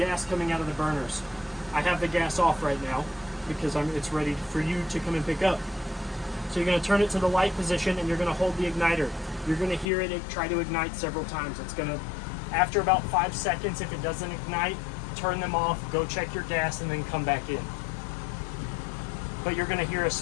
coming out of the burners. I have the gas off right now because it's ready for you to come and pick up. So you're going to turn it to the light position, and you're going to hold the igniter. You're going to hear it try to ignite several times. It's going to, after about 5 seconds, if it doesn't ignite, turn them off, go check your gas, and then come back in. But you're going to hear a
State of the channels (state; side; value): drops out; right; at 9.9 s